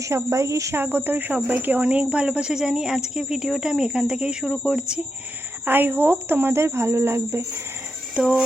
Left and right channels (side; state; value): both; normal; correlation 0.85